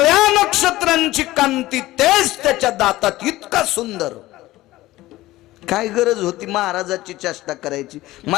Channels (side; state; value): right; quieter; 17.2 dB